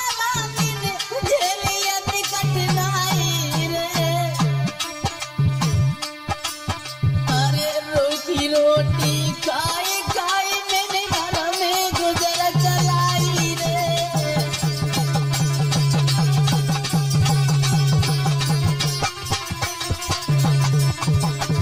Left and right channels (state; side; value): identical; both; correlation 1.00